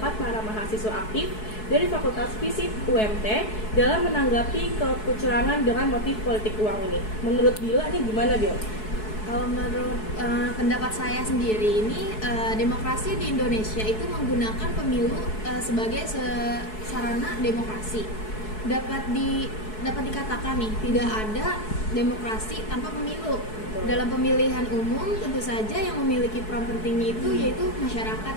para mahasiswa aktif dari Fakultas Fisip UMT dalam menanggapi kecurangan dengan motif politik uang ini. Menurut Bila nih gimana, Bil? Kalau menurut pendapat saya sendiri ini, demokrasi di Indonesia itu menggunakan pemilu sebagai sarana demokrasi. Dapat dikatakan nih, tidak ada demokrasi tanpa pemilu. Dalam pemilihan umum tentu saja yang memiliki peran penting itu yaitu masyarakat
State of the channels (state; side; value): late; right; 4.7 ms